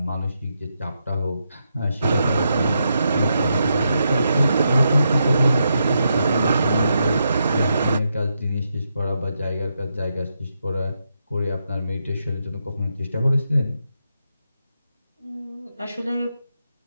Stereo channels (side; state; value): both; inverted; correlation -0.83